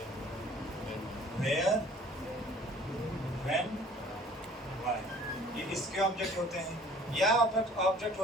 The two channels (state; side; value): normal; both; correlation 0.52